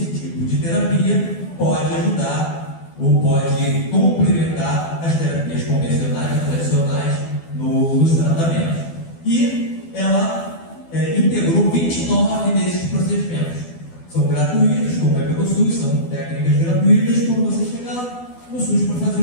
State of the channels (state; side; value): late; right; 12 ms